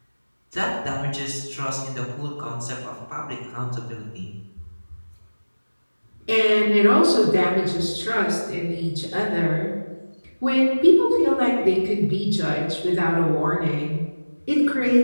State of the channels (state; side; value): inverted; both; correlation -1.00